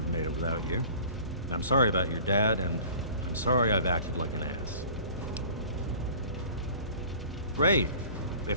made it without you. And I'm sorry about your dad, and I'm sorry I've acted like an ass. Great.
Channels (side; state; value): both; inverted; correlation -0.45